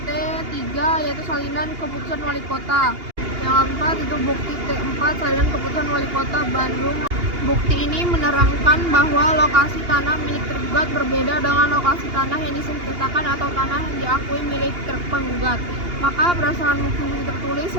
T3 yaitu salinan keputusan Wali Kota. Yang keempat itu bukti T4 salinan keputusan Wali Kota Bandung. Bukti ini menerangkan bahwa lokasi tanah milik tergugat berbeda dengan lokasi tanah yang disengketakan atau tanah yang diakui milik penggugat. Maka berdasarkan bukti tertulis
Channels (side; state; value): left; late; 2.8 ms